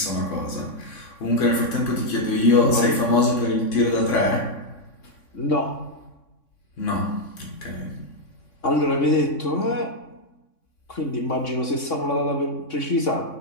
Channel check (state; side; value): late; right; 3.6 ms